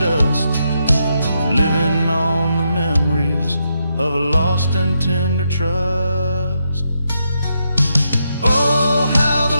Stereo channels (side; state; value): both; inverted; correlation -0.82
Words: dust, living on the memories of a lost and tender trust. Oh, how